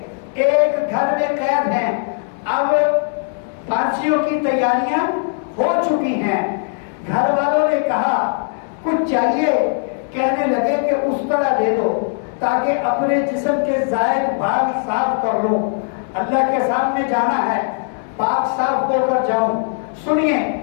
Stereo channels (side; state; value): right; silent; 64 dB below the other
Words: ایک گھر میں قید ہیں، اب پھانسیوں کی تیاریاں ہو چکی ہیں۔ گھر والوں نے کہا کچھ چاہیے، کہنے لگے کہ اس طرح دے دو تاکہ اپنے جسم کے زائد بھاگ صاف کر لوں، اللہ کے سامنے جانا ہے، پاک صاف ہو کر جاؤں۔ سنیے،